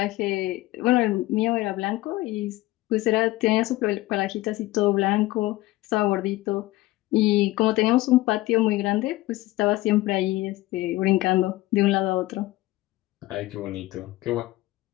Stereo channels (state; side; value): quieter; right; 18.2 dB